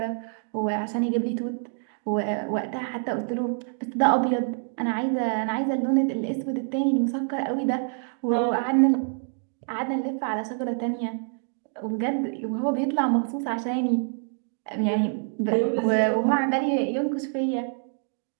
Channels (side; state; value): left; silent; 58 dB below the other